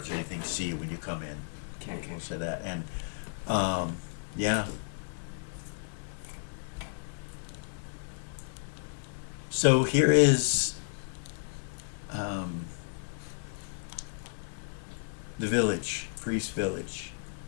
or anything see you when you come in. Okay. We'll say that. And yeah. So here is the village, Priest Village.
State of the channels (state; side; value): silent; right; digital silence